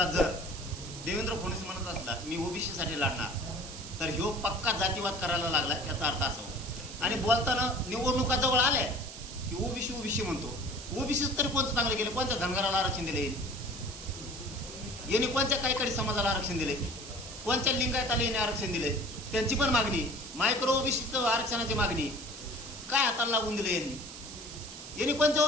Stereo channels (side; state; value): right; noise; hiss, 12 dB below the sound